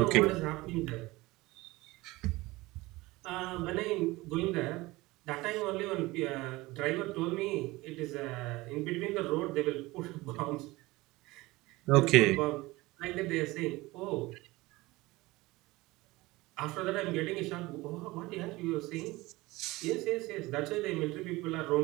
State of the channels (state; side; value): quieter; left; 20.6 dB